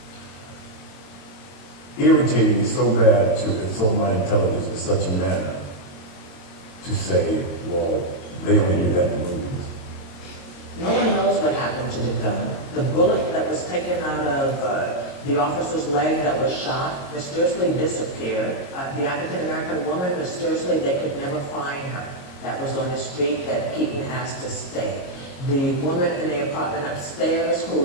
irritated me so bad to insult my intelligence in such a manner to say, well, they only do that in the movies. No one knows what happened to the gun. The bullet that was taken out of the officer's leg that was shot mysteriously disappeared. The African-American woman, mysteriously, they could never find her. That was on the street that Keaton asked to stay. The woman in the apartment upstairs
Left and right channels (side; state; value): right; late; 22 ms